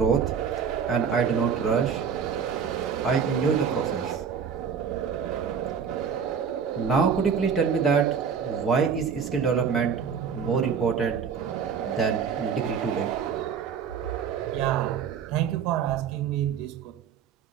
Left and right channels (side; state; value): left; quieter; 6.8 dB